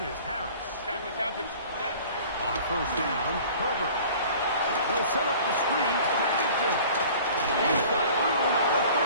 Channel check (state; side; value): inverted; both; correlation -0.46